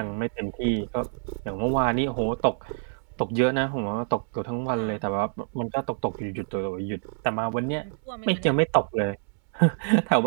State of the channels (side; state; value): left; silent; digital silence